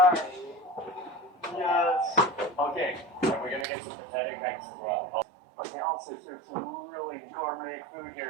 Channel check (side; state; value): left; drops out; at 3.7 s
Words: Yes. Okay, we're gonna get some pathetic next as well. But they also serve some really gourmet food